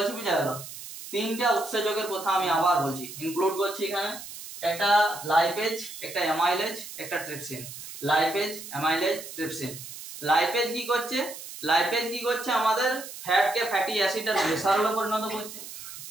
বুঝা গেল? তিনটা উৎসেচকের কথা আমি আবার বলছি, ইনক্লুড করছি এখানে। একটা লাইপেজ, একটা অ্যামাইলেজ, একটা trypsin. Lipase, amylase, trypsin. Lipase কি করছে? লাইপেজ কি করছে? আমাদের ফ্যাটকে ফ্যাটি অ্যাসিড আর গ্লিসারলে পরিণত করছে।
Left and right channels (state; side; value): noise; right; hiss, 12 dB below the sound